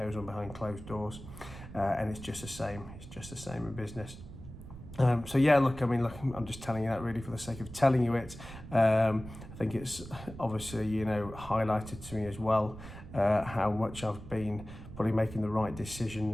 on behind closed doors, and it's just the same. It's just the same in business. I'm just telling you that really for the sake of telling you it. I think it's obviously highlighted to me as well how much I've been probably making the right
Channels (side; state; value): right; noise; rumble, 14 dB below the sound